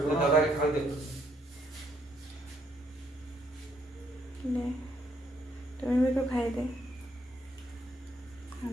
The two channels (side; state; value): both; normal; correlation 0.71